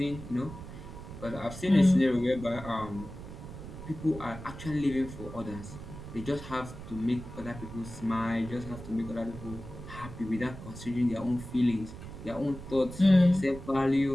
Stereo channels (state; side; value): noise; right; rumble, 12 dB below the sound